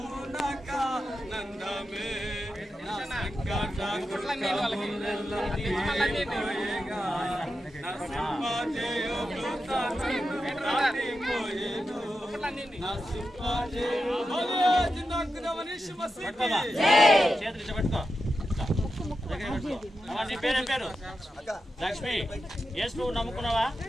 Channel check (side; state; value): both; normal; correlation 0.89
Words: నాకానందమే, నా సంకట దుఃఖములెల్ల తీరిపోయేగా, నా సింహజయము దాటిపోయేను, నా సింహజయము చేతులు పట్టుకో. నీ పేరేం పేరు? లక్ష్మి. యేసు ప్రభు నమ్ముకున్నావా?